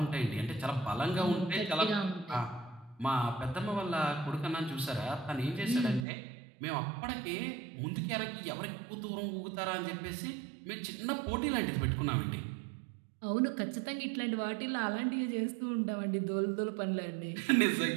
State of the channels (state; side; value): drops out; left; at 6.1 s